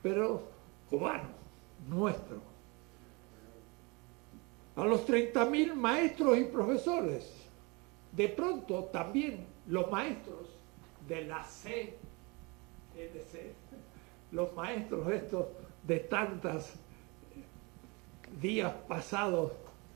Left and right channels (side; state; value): left; quieter; 28.0 dB